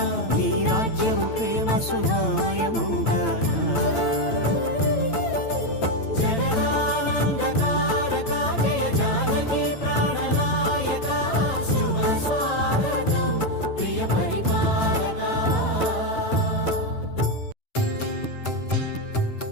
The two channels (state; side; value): late; right; 8.9 ms